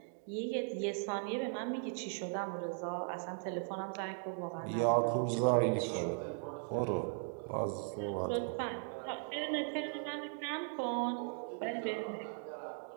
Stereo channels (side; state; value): left; silent; 52 dB below the other